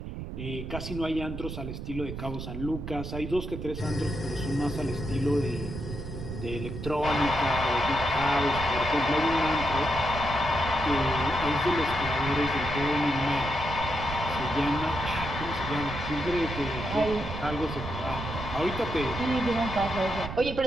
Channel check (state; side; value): noise; right; rumble, 7 dB below the sound